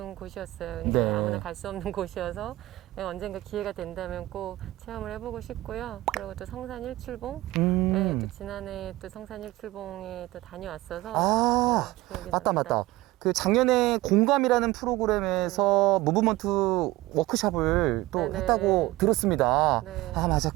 곳이었어요. 근데 네. 아무나 갈 수 없는 곳이어서 언젠가 기회가 된다면 꼭 체험을 해보고 싶고요. 그리고 또 성산 일출봉, 네, 또 지난해 또 성산 일출봉에 또 다녀왔어서 아, 네, 기억이 맞다, 납니다. 맞다. 그 작년에 공감이라는 프로그램에서 무브먼트 워크숍을 또 네네. 했다고 들었습니다. 네. 아, 맞아.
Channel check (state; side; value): quieter; left; 18.4 dB